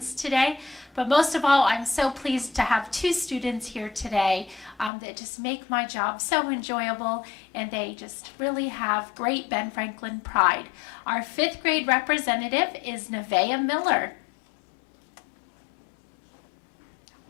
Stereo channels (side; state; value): right; drops out; at 4.9 s